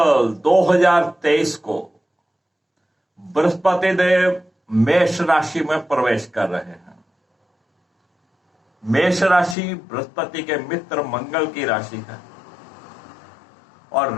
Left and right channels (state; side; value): drops out; right; at 9.6 s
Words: 2023 को बृहस्पति देव मेष राशि में प्रवेश कर रहे हैं। मेष राशि बृहस्पति के मित्र मंगल की राशि है और